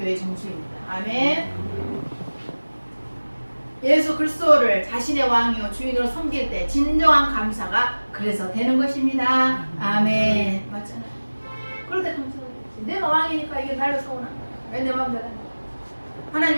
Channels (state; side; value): inverted; both; correlation -1.00